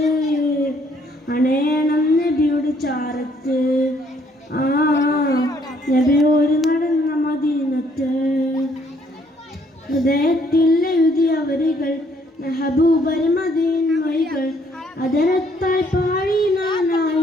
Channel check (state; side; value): normal; both; correlation 0.66